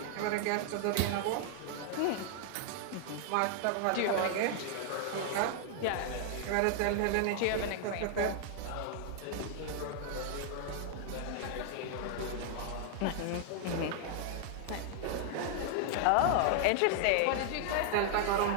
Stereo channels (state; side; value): different; both; correlation 0.00